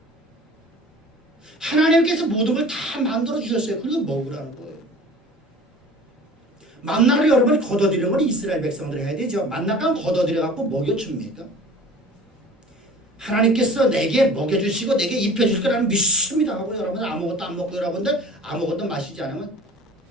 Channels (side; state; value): both; normal; correlation 0.44